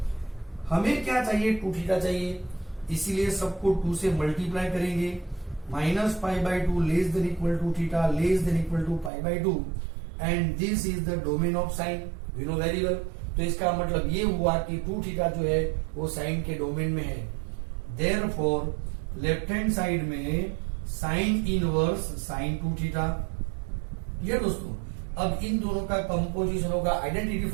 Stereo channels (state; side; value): drops out; left; at 9.1 s